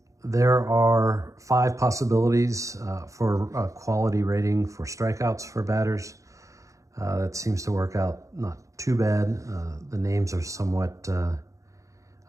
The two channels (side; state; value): left; late; 0.15 ms